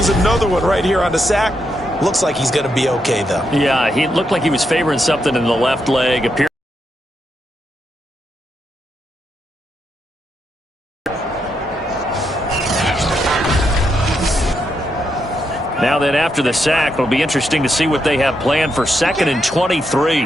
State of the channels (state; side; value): normal; both; correlation 0.81